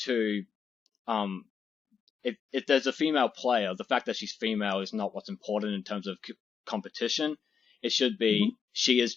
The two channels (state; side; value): quieter; right; 6.6 dB